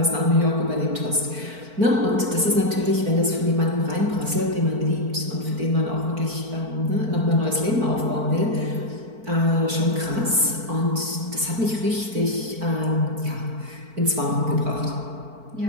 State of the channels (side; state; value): left; late; 4.5 ms